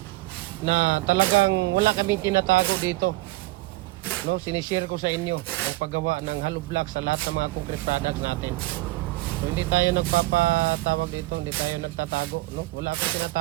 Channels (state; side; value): quieter; left; 19.9 dB